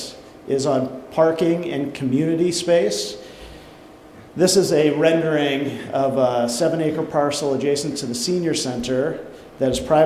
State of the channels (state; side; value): identical; both; correlation 1.00